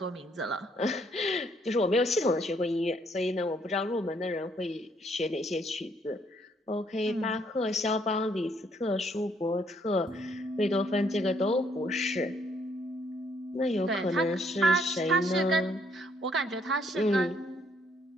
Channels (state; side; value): normal; both; correlation 0.68